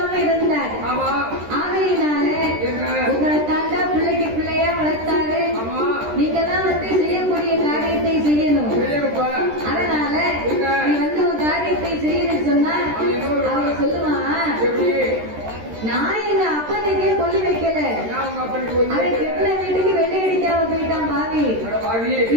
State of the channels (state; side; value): late; left; 13 ms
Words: இருந்தார். ஆகையினால உங்களை தாண்டா பிள்ளைக்கு பிள்ளையா வளர்த்தாரு. நீங்கெல்லாம் வந்து செய்யக்கூடிய காரியத்தை செய்யணும். அதனால நீ வந்து உன் காரியத்தை செய்யணும்னு சொன்னா அவன் சொல்லுவான், நான் எங்க அப்பனுக்கே கொல்லி வைக்கல, அவன் கெட்டின வீட்டுக்கு வெள்ளை அடிக்காம போயிட்டான் பாவி,